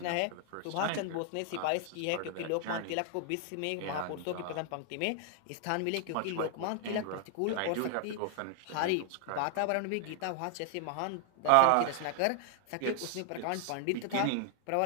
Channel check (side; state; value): both; different; correlation 0.00